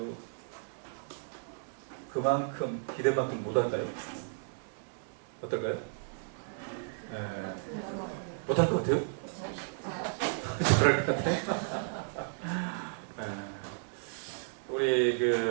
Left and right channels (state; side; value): silent; left; digital silence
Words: 그만큼 기대만큼 못할까요? 어떨까요? 못할 것 같아요? 그럴 것 같아요? 우리